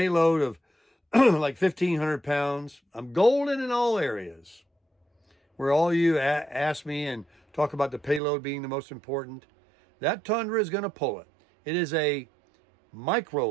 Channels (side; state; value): left; drops out; at 8.2 s